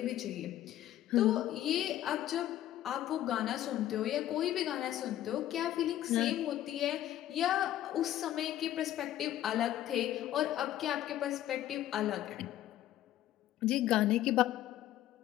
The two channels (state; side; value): quieter; right; 12.9 dB